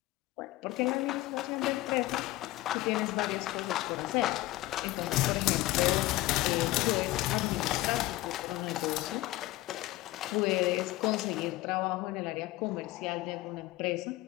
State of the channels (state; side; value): quieter; right; 17.9 dB